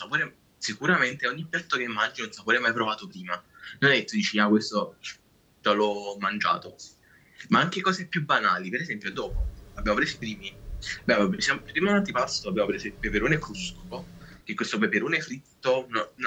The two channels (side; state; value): both; identical; correlation 1.00